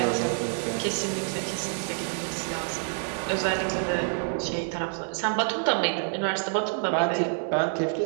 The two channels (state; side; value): silent; left; 60 dB below the other